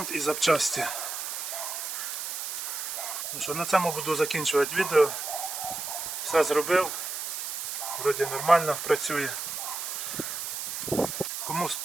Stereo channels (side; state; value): right; noise; hiss, 4 dB below the sound